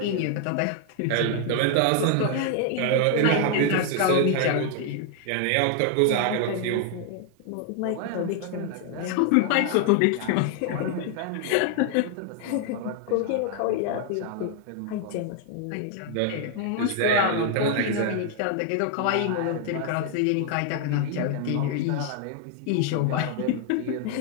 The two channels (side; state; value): both; different; correlation 0.00